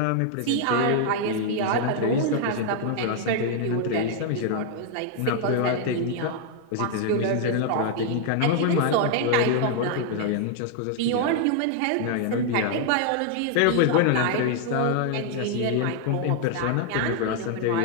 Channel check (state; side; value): different; both; correlation 0.00